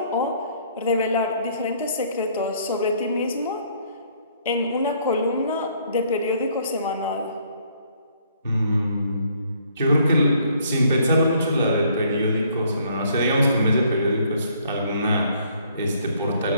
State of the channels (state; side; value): inverted; both; correlation -0.64